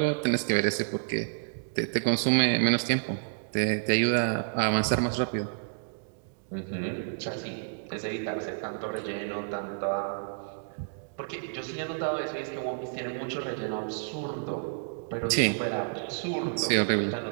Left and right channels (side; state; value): left; silent; digital silence